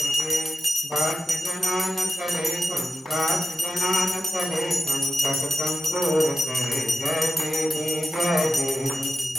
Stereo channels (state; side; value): normal; both; correlation 0.89